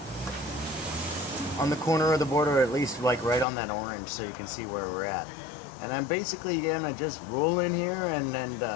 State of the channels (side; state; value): right; drops out; at 3.5 s